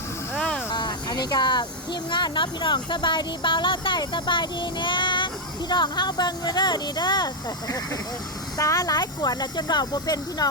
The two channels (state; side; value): normal; both; correlation 0.01